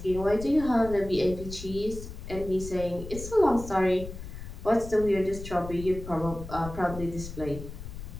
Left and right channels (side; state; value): left; noise; rumble, 11 dB below the sound